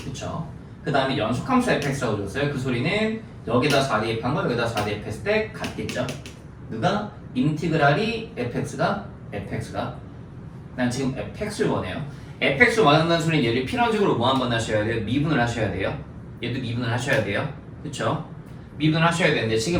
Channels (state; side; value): identical; both; correlation 1.00